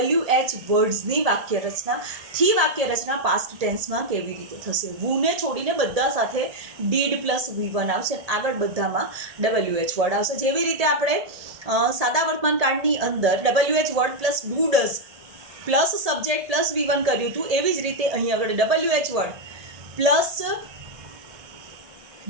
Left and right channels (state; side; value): late; left; 1.7 ms